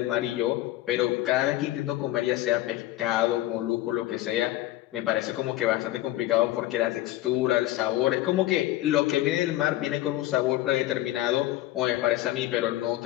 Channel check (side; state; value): right; quieter; 15.7 dB